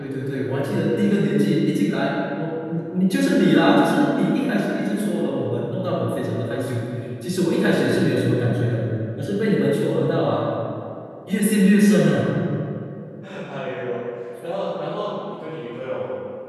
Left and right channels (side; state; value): both; identical; correlation 1.00